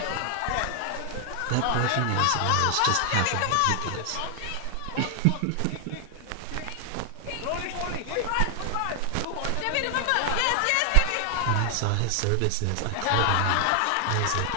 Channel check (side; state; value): both; different; correlation 0.00